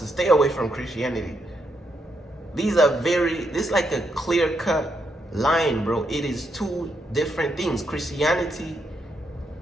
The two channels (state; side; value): normal; both; correlation 0.79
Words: stay away from Christianity. This is like a clear-cut line, bro. It is two different things. Christianity